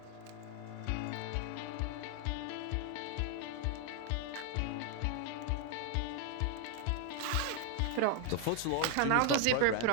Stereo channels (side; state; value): both; different; correlation 0.00